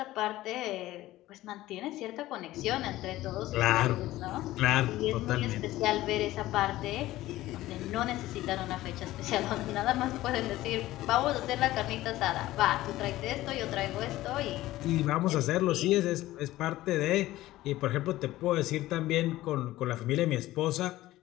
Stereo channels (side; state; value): right; quieter; 16.2 dB